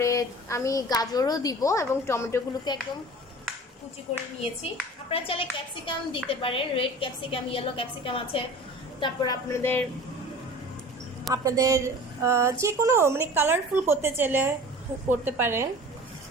আমি গাজরও দিব এবং টমেটোগুলোকে একদম কুচি করে নিয়েছি। আপনারা চাইলে ক্যাপসিকাম দিতে পারেন, রেড ক্যাপসিকাম, ইয়েলো ক্যাপসিকাম আছে। তারপর আপনাদের যে কোনো মানে কালারফুল করতে চাইলে করতে পারেন।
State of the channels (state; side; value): normal; both; correlation 0.40